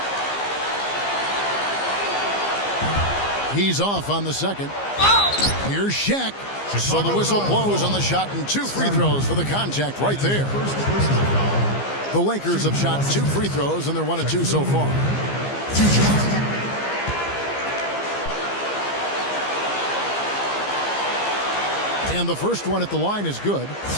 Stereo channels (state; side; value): late; right; 15 ms